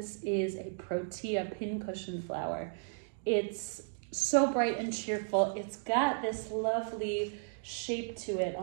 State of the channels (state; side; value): silent; left; digital silence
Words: is a Protea pincushion flower. It's so bright and cheerful. It's got this lovely shape to it,